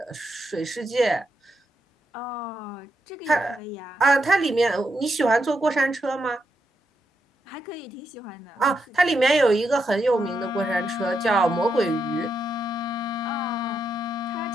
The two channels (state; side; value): normal; both; correlation 0.82